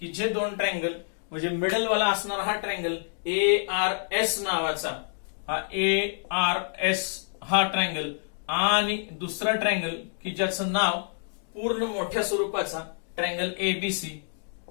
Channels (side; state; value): right; silent; digital silence